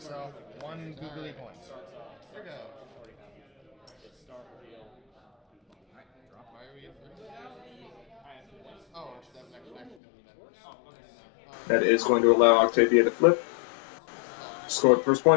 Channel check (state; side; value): drops out; right; at 10.0 s